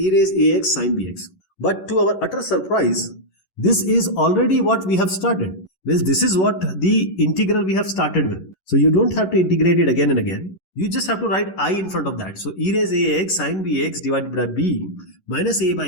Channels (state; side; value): late; right; 11 ms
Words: raise ax sin bx. But to our utter surprise, this is already what we have started. Well, this is what the integral we have started with. So you don't have to integrate it again and again. You just have to write I in front of that. So e raised ax sin bx divided by b minus a